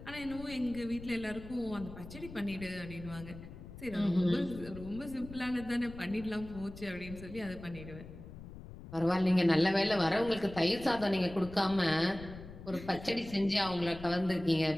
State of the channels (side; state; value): left; noise; rumble, 14 dB below the sound